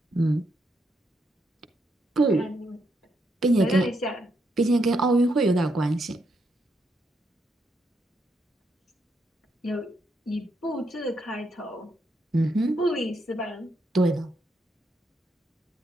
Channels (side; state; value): both; normal; correlation 0.78